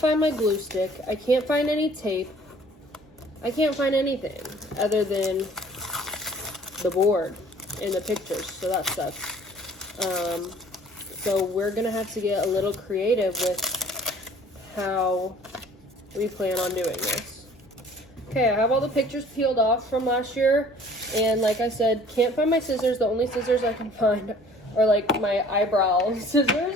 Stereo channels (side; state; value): both; normal; correlation 0.52